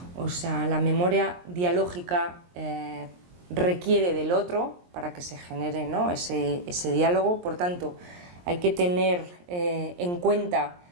O sea, la memoria dialógica requiere del otro para que se genere, ¿no? ese diálogo. Por tanto, hay que tener en cuenta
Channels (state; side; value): late; left; 23 ms